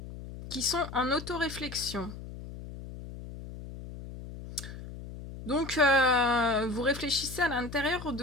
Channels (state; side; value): noise; left; hum, 12 dB below the sound